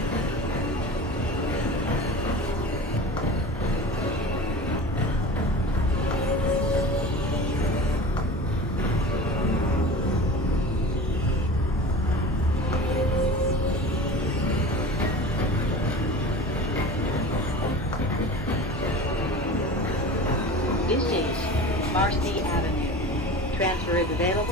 This is Marcy Avenue. Transfer is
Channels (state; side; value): normal; both; correlation 0.35